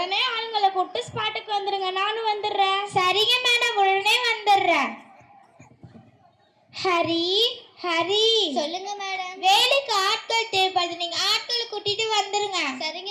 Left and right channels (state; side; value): identical; both; correlation 1.00